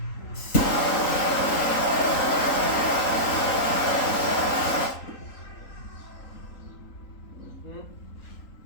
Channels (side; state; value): right; late; 3.8 ms